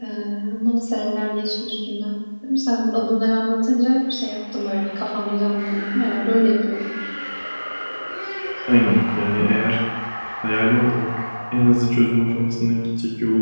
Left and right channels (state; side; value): inverted; both; correlation -1.00